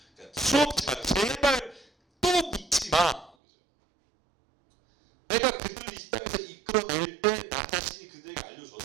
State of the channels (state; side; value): drops out; left; at 3.4 s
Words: 그러니까 수없이 말했어. 제발 또 묻지 마. 내가 그들을 이 땅에서 이끌어낼 때 나 자신이 그들에게